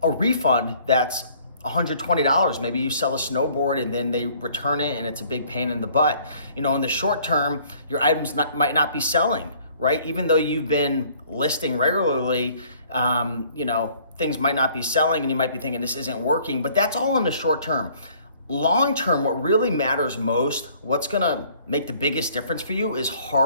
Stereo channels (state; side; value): inverted; both; correlation -0.57